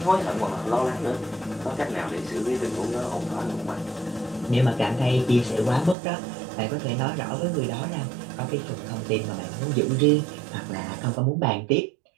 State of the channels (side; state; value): left; drops out; at 6.0 s